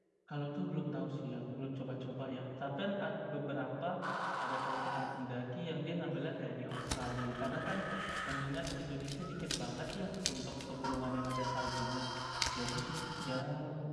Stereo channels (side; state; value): both; identical; correlation 1.00